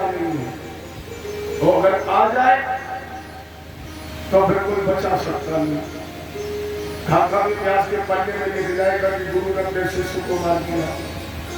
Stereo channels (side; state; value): both; identical; correlation 1.00